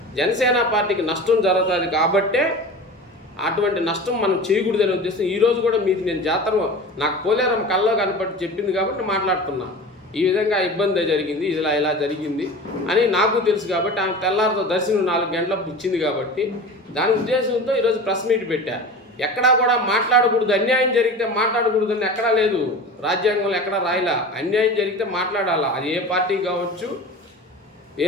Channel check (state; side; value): normal; both; correlation 0.34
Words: జనసేన పార్టీకి నష్టం జరుగుతుంది కాబట్టే అటువంటి నష్టం మనం చేయకూడదని ఉద్దేశం. ఈరోజు కూడా మీకు నేను జాతర నాకు పోలేరమ్మ కల్లో కనపడి చెప్పింది కాబట్టి మాట్లాడుతున్నా. ఈ విధంగా ఇబ్బంది జరిగింది, ఇలా జరిగింది అని నాకు తెలుసు కాబట్టి ఆమె తెల్లారితో దర్శనం 4 గంటలకు ఇచ్చింది కాబట్టి దాని ఉద్దేశంతో ఈరోజు ప్రెస్ మీట్ పెట్టా. ఎక్కడా కూడా మాట్లాడకూడదు, అన్యాయం జరిగితే మాట్లాడకూడదు అని ఎక్కడా లేదు. రాజ్యాంగంలో ఎక్కడా రాయలా. అన్యాయం జరిగితే మాట్లాడాలా. అది ఏ పార్టీ కావచ్చు, ఏ